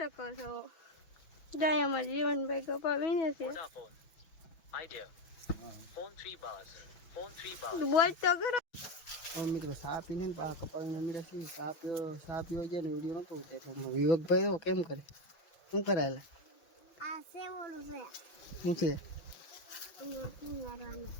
છો. જાય અમારા જીવનભાઈ કપા વીણે છે. બોલ તો કરો. મિત્રો સા પીને કપા વીણવા મળ્યા છે. સા પીવો જાય ને વિડીયો નતો ઉતાર્યો. વિવેકભાઈ તો કેમ કરે? શું કરાયેલા? આ સેવોલું છે. શું છે?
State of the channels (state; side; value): late; right; 6.1 ms